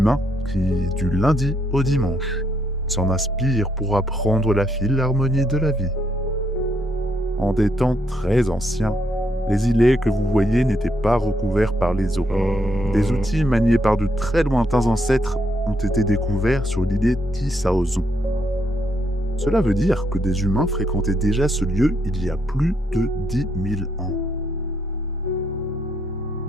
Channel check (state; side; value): normal; both; correlation 0.76